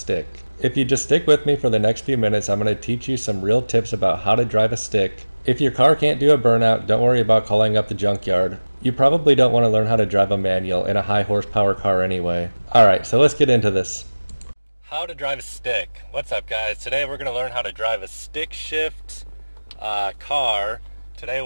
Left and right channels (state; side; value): inverted; both; correlation -1.00